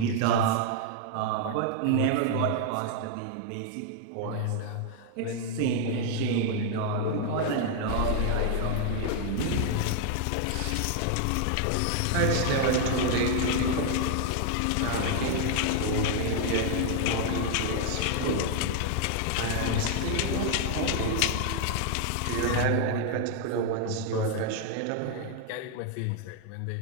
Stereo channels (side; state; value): both; different; correlation 0.00